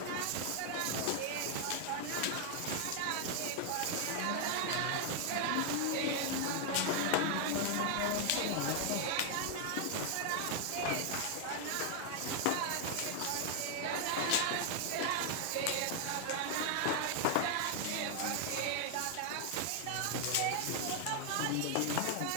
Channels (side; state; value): both; different; correlation 0.00